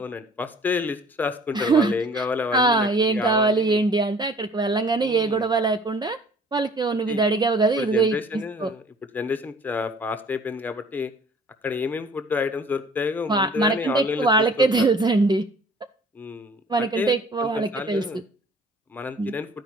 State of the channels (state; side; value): normal; both; correlation 0.51